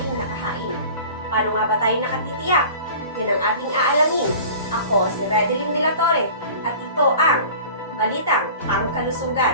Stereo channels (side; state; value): both; inverted; correlation -0.41